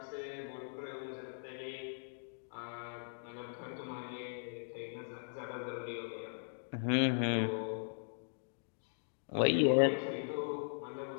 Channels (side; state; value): right; silent; digital silence